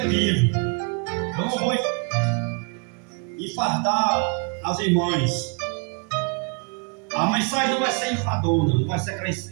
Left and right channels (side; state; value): left; quieter; 34.6 dB